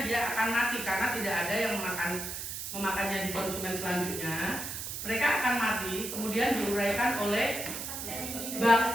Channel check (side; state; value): right; noise; hiss, 6 dB below the sound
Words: dia akan mati karena tidak ada yang memakannya di konsumen selanjutnya. Mereka akan mati, kemudian diuraikan oleh